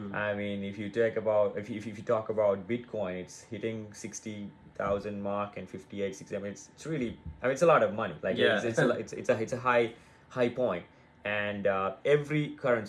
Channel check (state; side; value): identical; both; correlation 1.00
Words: I mean, if you talk about Bitcoin, it's hitting 60,000 mark and 58, 60. I mean, it's really, I mean, it's a lot of money. Like Yeah. it's a high point. And every